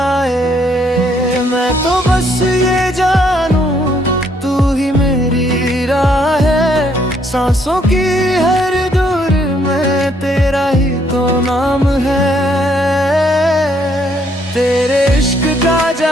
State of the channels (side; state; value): both; normal; correlation 0.69